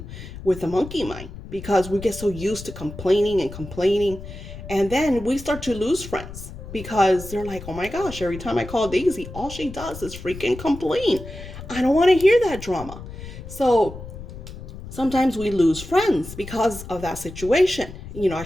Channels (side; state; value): left; noise; rumble, 12 dB below the sound